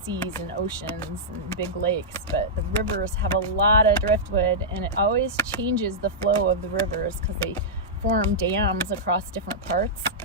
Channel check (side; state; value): both; normal; correlation -0.12